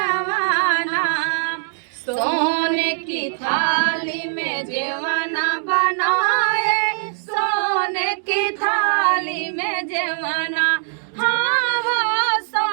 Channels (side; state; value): left; silent; digital silence